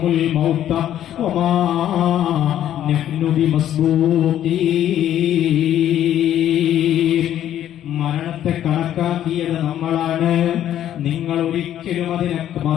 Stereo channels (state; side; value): quieter; right; 11.3 dB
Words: മൗത വമാ നഹ്നു ബിമസ്ബൂഖീൻ. മരണത്തെ കണക്കാക്കിയത് നമ്മളാണ്, നിങ്ങൾ ഒരിക്കലും അതിനെ